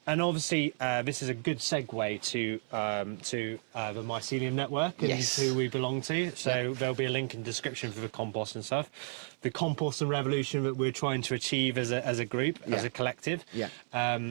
obviously this is a good segue to the mycelium network and who we belong to. So there'll be a link in the description for the compost and stuff. The composting revolution that we're trying to achieve as a group, as a collective.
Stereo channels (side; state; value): left; silent; 56 dB below the other